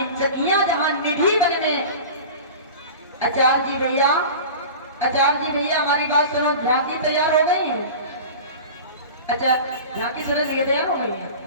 सखियां जहां निधि वन में। आचार्य जी भैया हमारी बात सुनो, झांकी तैयार हो गई है? अच्छा झांकी सुनो तैयार हो गई है?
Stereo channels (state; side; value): inverted; both; correlation -0.35